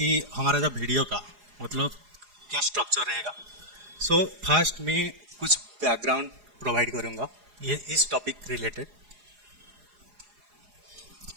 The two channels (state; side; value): late; left; 4.8 ms